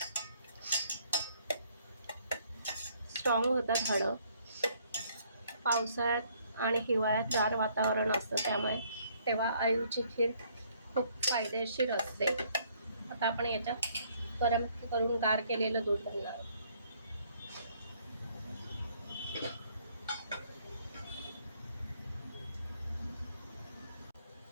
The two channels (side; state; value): both; inverted; correlation -0.65